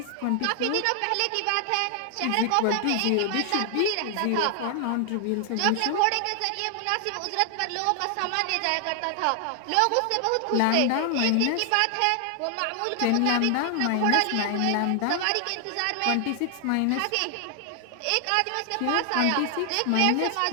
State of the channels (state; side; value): different; both; correlation 0.00